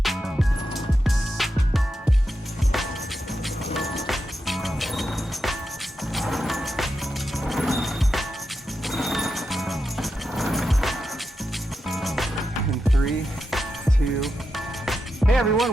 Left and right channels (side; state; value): both; normal; correlation 0.87